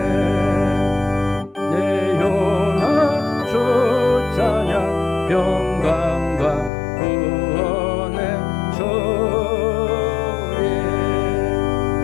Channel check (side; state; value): right; drops out; at 6.7 s